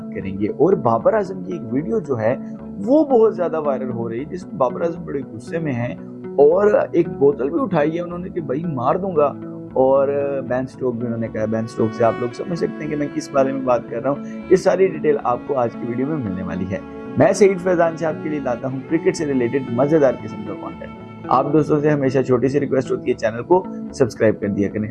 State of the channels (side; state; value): both; identical; correlation 1.00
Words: करेंगे। और बाबर आजम की एक वीडियो जो है वो बहुत ज्यादा वायरल हो रही है, जिसमें बाबर आजम बड़े गुस्से में हैं और एक बोतल भी उठाई है उन्होंने कि भाई मार दूंगा। और बेन स्टोक भी उन्होंने कहा। बेन स्टोक से आप लोग समझ सकते हैं कि मैं किस बारे में बात कर रहा हूँ। ये सारी डिटेल आपको आज की वीडियो में मिलने वाली है। मैं सईद फैजान से आपके लिए लाता हूँ क्रिकेट से रिलेटेड मजेदार किस्म का कंटेंट। आप दोस्तों से हमेशा छोटी सी रिक्वेस्ट होती है, चैनल को सब्सक्राइब कर दिया